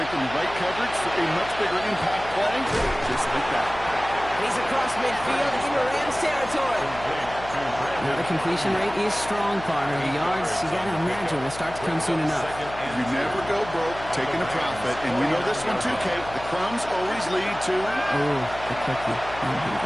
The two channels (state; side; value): noise; left; hum, 14 dB below the sound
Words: the right coverage for a much bigger impact play, just like that. He's across midfield into Rams territory. Now the completion rate is strong, partner. The yards, you got to imagine, will start to come soon enough. You never go broke taking a profit, and we know this one too, Kate. The crumbs always lead to... Oh, the cookie. I'm